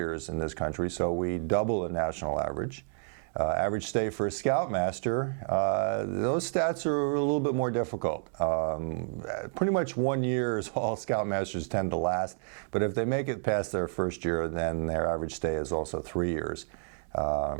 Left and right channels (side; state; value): left; silent; digital silence